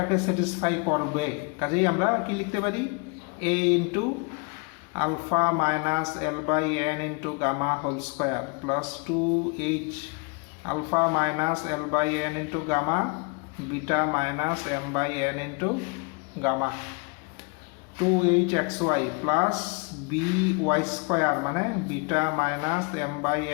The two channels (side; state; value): right; quieter; 31.8 dB